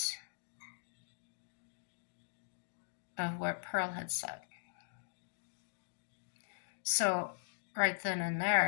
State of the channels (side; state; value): right; silent; digital silence